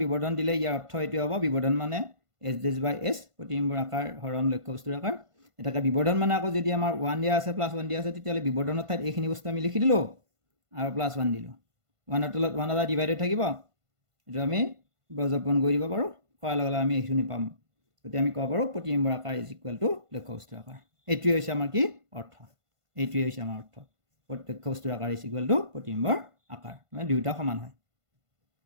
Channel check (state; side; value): late; left; 1.5 ms